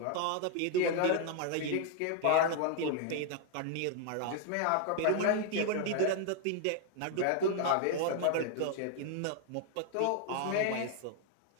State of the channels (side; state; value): both; different; correlation 0.00